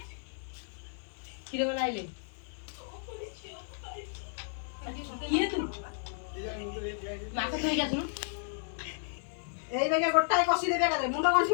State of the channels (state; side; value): silent; right; 56 dB below the other